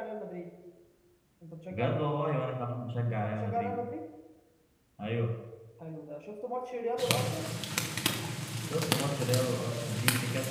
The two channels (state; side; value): identical; both; correlation 1.00